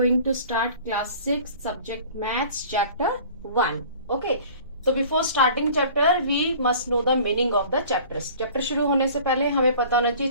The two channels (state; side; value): inverted; both; correlation -0.47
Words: to start class 6 subject maths chapter 1. Okay, so before starting chapter we must know the meaning of the chapters. Chapter शुरू होने से पहले हमें पता होना